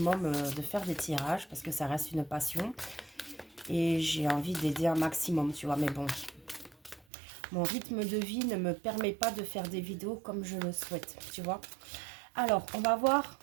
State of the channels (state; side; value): drops out; left; at 7.1 s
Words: de faire des tirages parce que ça reste une passion. Et j'ai envie d'aider un maximum, tu vois. Mais bon, mon rythme de vie ne me permet pas de faire des vidéos comme je le souhaite, tu vois. Alors, on va voir.